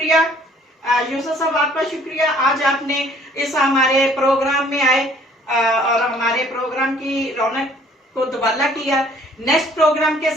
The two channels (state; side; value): normal; both; correlation 0.58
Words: यूसुफ साहब आपका शुक्रिया, आज आपने इस हमारे प्रोग्राम में आए और हमारे प्रोग्राम की रौनक को दुबाला किया। नेक्स्ट प्रोग्राम के